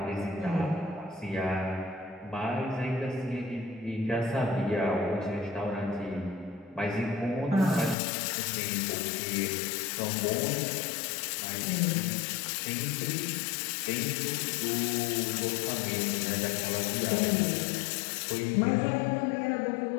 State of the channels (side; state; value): right; drops out; at 8.0 s